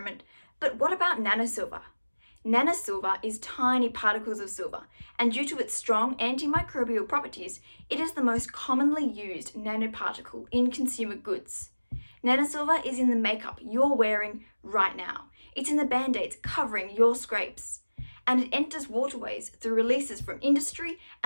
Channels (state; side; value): inverted; both; correlation -1.00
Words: but what about nanosilver? Nanosilver is tiny particles of silver, and due to its strong antimicrobial properties, it is the most commonly used nanoparticle in consumer goods. Nanosilver is in the makeup you're wearing right now. It's in the band-aids covering your scrapes. And it enters waterways through releases from industry